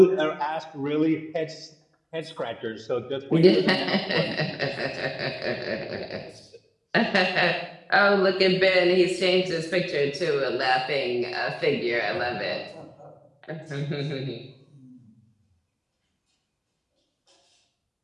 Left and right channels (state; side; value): identical; both; correlation 1.00